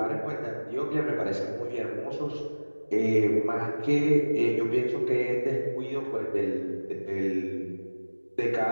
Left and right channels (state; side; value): inverted; both; correlation -1.00